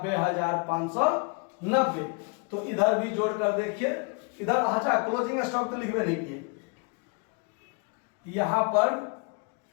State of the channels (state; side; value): quieter; right; 34.4 dB